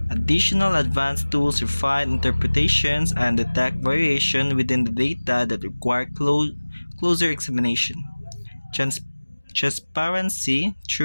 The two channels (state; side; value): inverted; both; correlation -1.00